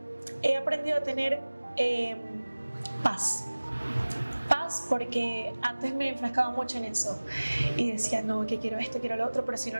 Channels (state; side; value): inverted; both; correlation -1.00